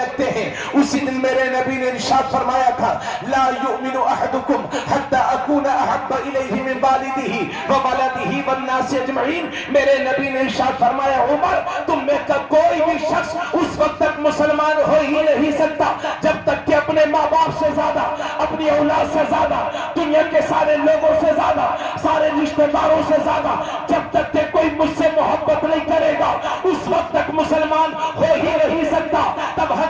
ہیں۔ اسی دن میرے نبی نے ارشاد فرمایا تھا، لا یؤمن احدکم حتی اکون احب الیہ من والدہ وولدہ والناس اجمعین۔ میرے نبی نے ارشاد فرمایا، عمر تم میں کا کوئی بھی شخص اس وقت تک مسلمان ہو ہی نہیں سکتا جب تک کہ اپنے ماں باپ سے زیادہ، اپنی اولاد سے زیادہ، دنیا کے سارے لوگوں سے زیادہ، سارے رشتہ داروں سے زیادہ، جب تک کہ کوئی مجھ سے محبت نہیں کرے گا اس وقت تک مسلمان ہو ہی نہیں سکتا۔ تب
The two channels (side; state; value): both; identical; correlation 1.00